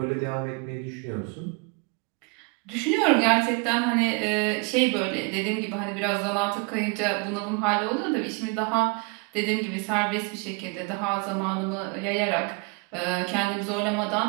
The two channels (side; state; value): left; quieter; 32.5 dB